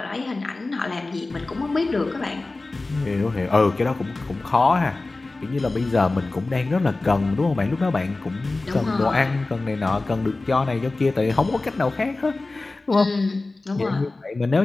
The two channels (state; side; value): quieter; right; 3.3 dB